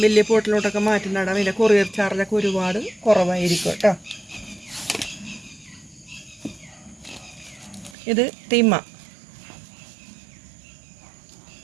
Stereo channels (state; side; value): drops out; left; at 8.0 s